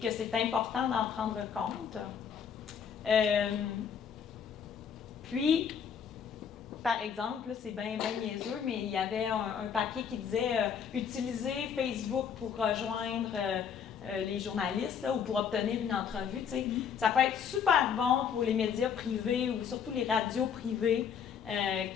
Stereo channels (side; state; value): right; quieter; 7.4 dB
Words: c'est important d'en prendre compte. Puis, par exemple, là, c'est bien niaiseux, mais il y avait un papier qui disait utiliser Facebook pour rejoindre les journalistes là, ou pour obtenir une entrevue. Tu sais. Ça peut être super bon pour les médias privés ou surtout les radios privées